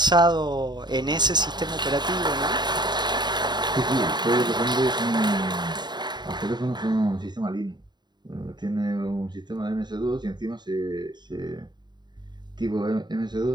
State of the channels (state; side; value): late; left; 0.21 ms